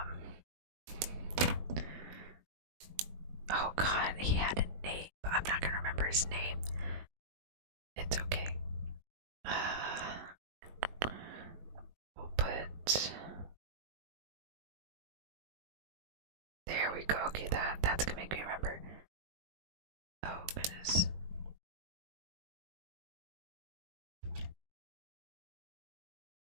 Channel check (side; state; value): left; late; 20 ms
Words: Oh god, he had a name, but I'm not gonna remember his name. It's okay. We'll put. There we go. Okay, that's gonna make me remember. Oh goodness.